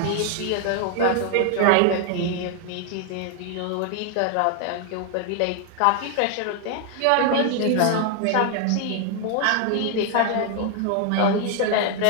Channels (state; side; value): different; both; correlation 0.00